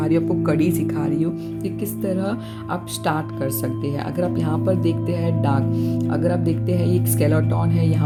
रही हूँ आपको, कड़ी सिखा रही हूँ कि किस तरह आप स्टार्ट कर सकते हैं। अगर आप यहाँ पर देखते हैं डार्क, अगर आप देखते हैं एक स्केलेटन है,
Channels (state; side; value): identical; both; correlation 1.00